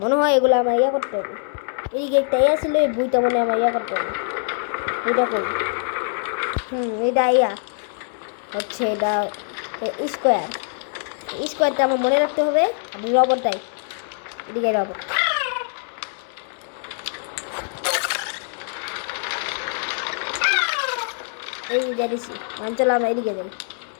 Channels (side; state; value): right; silent; 61 dB below the other